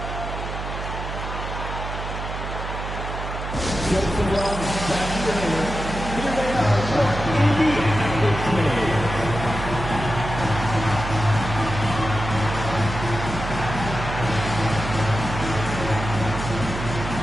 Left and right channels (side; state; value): right; noise; hum, 6 dB below the sound